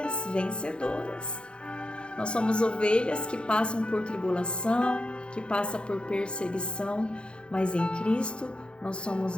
vencedoras. Nós somos ovelhas que passam por tribulação, que passam por perseguição, mas em Cristo nós somos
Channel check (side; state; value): right; late; 0.055 ms